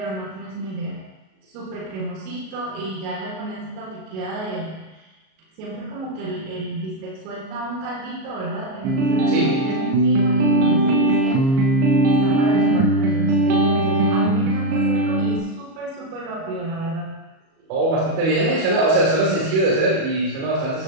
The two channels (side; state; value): left; late; 37 ms